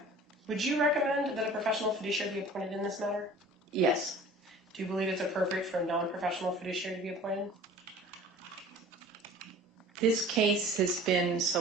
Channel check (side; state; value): both; normal; correlation 0.45